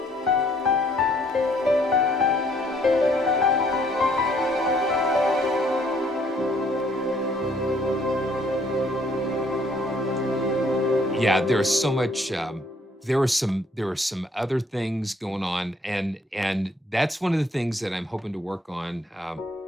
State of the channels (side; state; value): both; normal; correlation 0.64